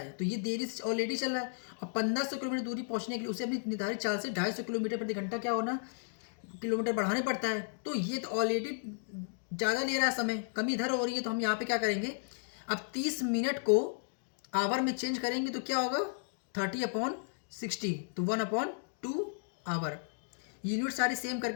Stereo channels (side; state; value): right; silent; digital silence